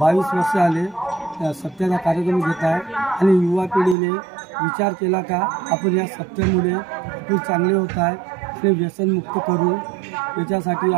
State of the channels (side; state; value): left; drops out; at 4.0 s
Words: वर्ष आले सप्त्याचा कार्यक्रम घेत आहे आणि युवा पिढीने विचार केला का आपण या सप्त्यामुळे आपण चांगले होत आहे ते व्यसनमुक्त करू याच्यासाठी